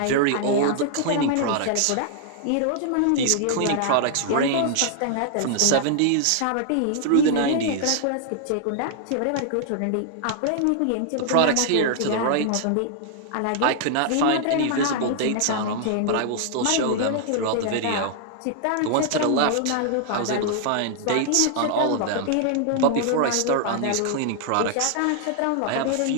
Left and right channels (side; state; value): both; different; correlation -0.01